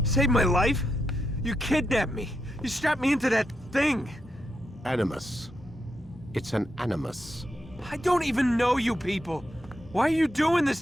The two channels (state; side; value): normal; both; correlation 0.83